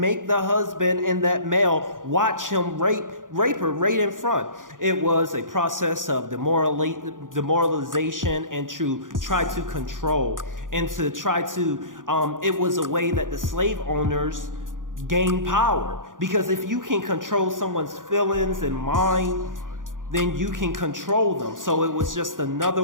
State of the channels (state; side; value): late; left; 0.89 ms